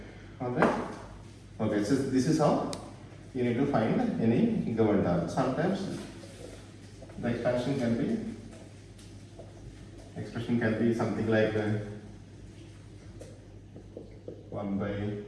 Alright. Okay, so this is how you need to find any given term. Sometimes the expression can be something like 1 by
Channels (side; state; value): both; identical; correlation 1.00